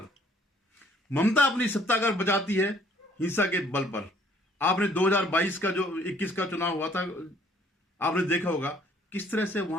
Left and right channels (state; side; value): normal; both; correlation 0.61